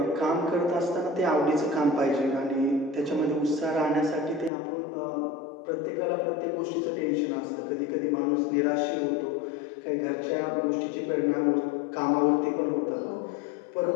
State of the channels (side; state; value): right; drops out; at 4.5 s